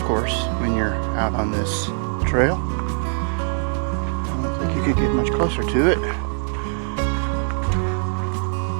course when you're out on this trail. I don't think you could get much closer to it.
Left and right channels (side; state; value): left; silent; 56 dB below the other